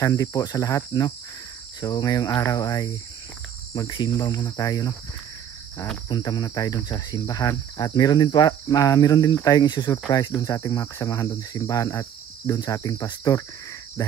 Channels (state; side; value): quieter; left; 9.4 dB